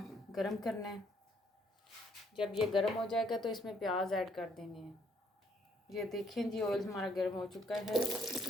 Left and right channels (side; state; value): both; normal; correlation 0.68